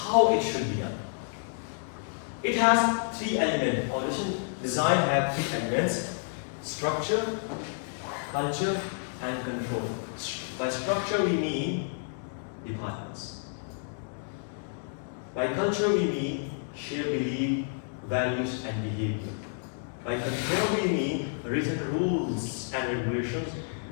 it should be done. It has 3 elements. Organization design have 3 elements: structure, culture, and control. By structure we mean departments. By culture we mean shared belief, values, and behavior. By control we mean written rules and regulations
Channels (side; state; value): right; silent; digital silence